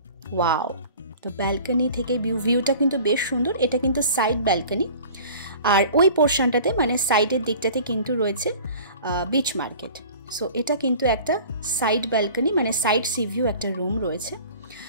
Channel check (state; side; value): inverted; both; correlation -0.44